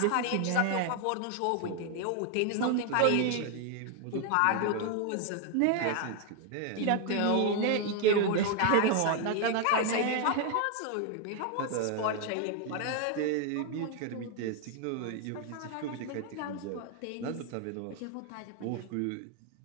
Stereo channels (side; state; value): both; different; correlation 0.00